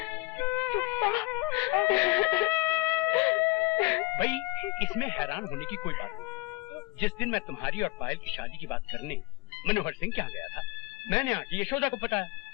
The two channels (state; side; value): quieter; right; 21.6 dB